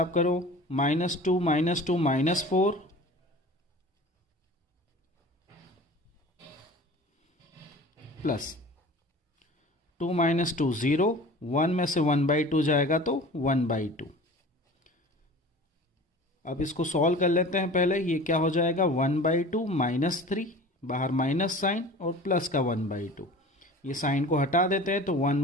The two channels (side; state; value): both; normal; correlation 0.40